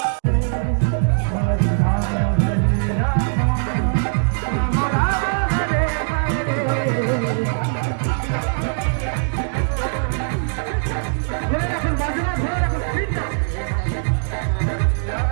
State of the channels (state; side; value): silent; left; digital silence